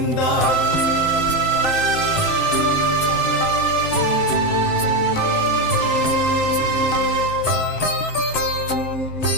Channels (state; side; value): late; right; 7.6 ms